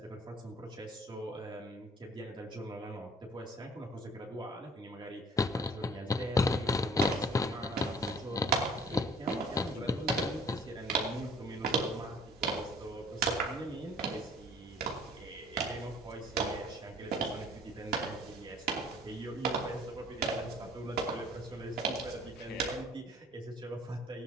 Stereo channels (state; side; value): normal; both; correlation 0.52